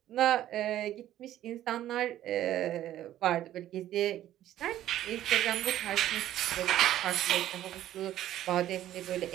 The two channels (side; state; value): left; quieter; 12.8 dB